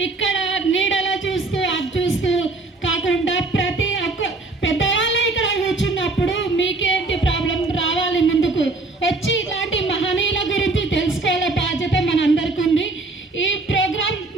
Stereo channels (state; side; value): quieter; left; 3.3 dB